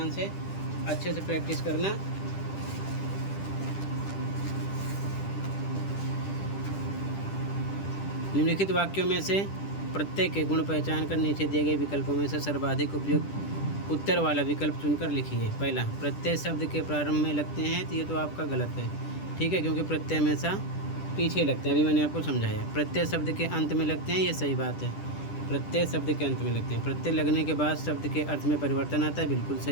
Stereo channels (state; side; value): late; right; 10 ms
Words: से, अच्छे से प्रैक्टिस करना। निम्नलिखित वाक्यों में से प्रत्येक के गुण पहचान कर नीचे दिए गए विकल्पों में से सर्वाधिक उपयुक्त उत्तर वाला विकल्प चुनकर लिखिए। पहला, प्रत्यय शब्द के प्रारंभ में लगते हैं, तो ये तो आपका गलत है। ठीक है, क्योंकि प्रत्यय हमेशा पीछे लगते हैं, अभी मैंने आपको समझाया। प्रत्यय शब्द के अंत में लगते हैं, ये सही बात है। प्रत्यय शब्द के अंत में लगते हैं। प्रत्यय लगने के बाद शब्द के अर्थ में परिवर्तन आता है, बिल्कुल